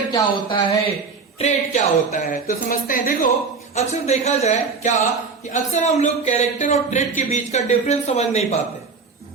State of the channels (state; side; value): quieter; left; 4.8 dB